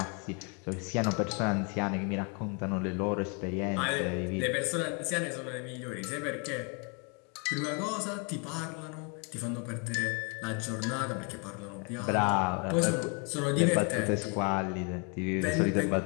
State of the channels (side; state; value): right; quieter; 34.8 dB